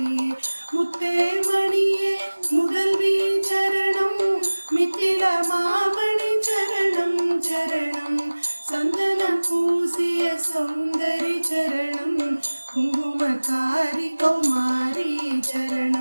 முத்தே மணியே முதல்வி சரணம் மித்தில மாமணி சரணம் சரணம் சந்தனம் பூசிய சௌந்தரி சரணம் குங்குமக்காரி கௌமாரி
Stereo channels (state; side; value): inverted; both; correlation -1.00